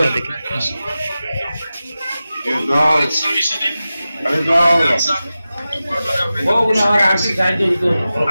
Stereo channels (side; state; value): both; inverted; correlation -0.94